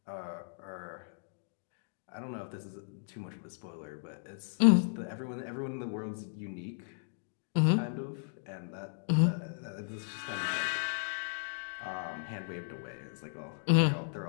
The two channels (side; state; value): right; silent; digital silence